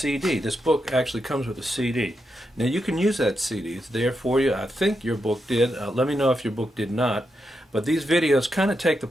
This book actually comes with a CD. Now you can use that CD. It's there for you. I think your book did. Let me know if your book did not. But these videos kind of take the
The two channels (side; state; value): both; normal; correlation 0.85